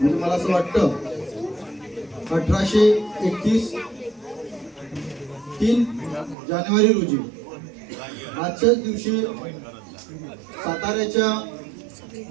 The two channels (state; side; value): drops out; left; at 6.4 s